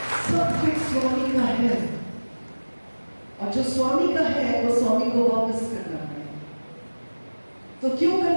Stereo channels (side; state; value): both; inverted; correlation -1.00